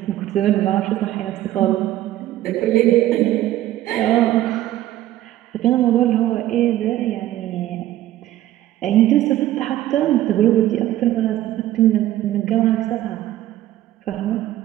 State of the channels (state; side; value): quieter; left; 14.0 dB